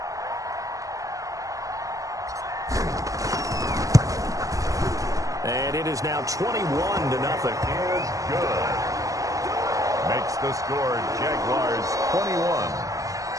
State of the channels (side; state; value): left; late; 0.16 ms